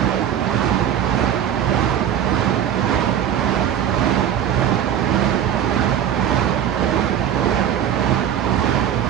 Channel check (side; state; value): left; quieter; 9.8 dB